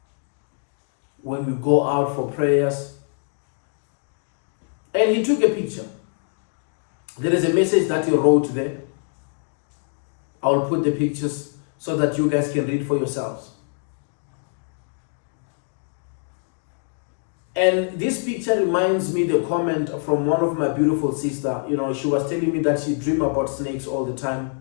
when we go out for prayers. And he took a picture. There is a message that he wrote there. I will put the pictures so that you guys can read for yourselves. And this picture reminds me the comment from one of my beautiful sister. She was telling me that she dreamed about snakes all the time.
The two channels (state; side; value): silent; right; 56 dB below the other